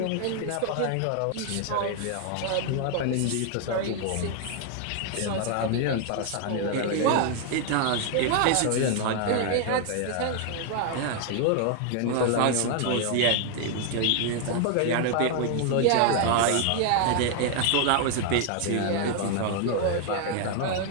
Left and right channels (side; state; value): both; different; correlation 0.00